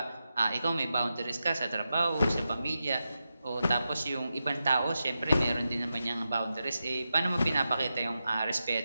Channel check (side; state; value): both; inverted; correlation -0.90